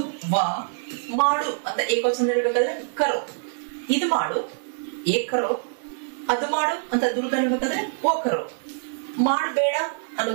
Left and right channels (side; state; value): left; silent; digital silence